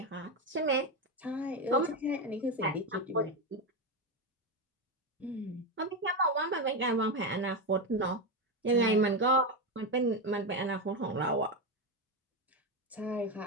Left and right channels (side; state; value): both; normal; correlation 0.12